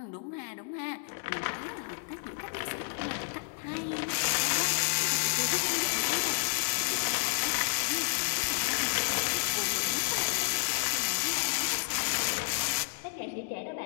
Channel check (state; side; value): silent; right; 57 dB below the other